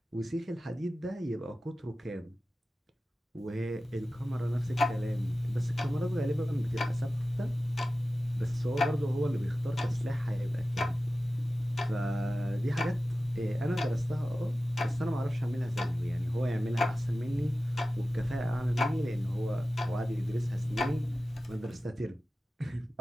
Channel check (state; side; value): normal; both; correlation 0.95